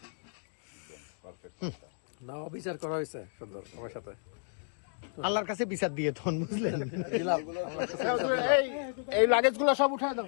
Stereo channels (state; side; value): silent; right; digital silence